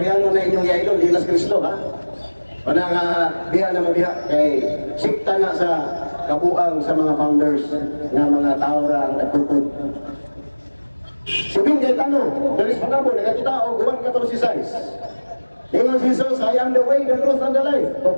na inyong yaidol, Dinas Cristo, ha? Wala nga, biya na mabiya, kay sikta na sa kabuang sa mga founders na mga tao ra ang nagpupod. Subing kay tanong, dalis pa na po, nagkatao, guwan 14:6. Ingon si Jesus, I am the way, the truth, and the life.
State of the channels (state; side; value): inverted; both; correlation -1.00